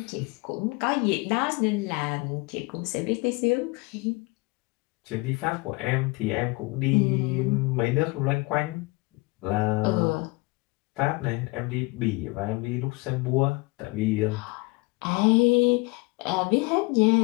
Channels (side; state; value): right; quieter; 25.1 dB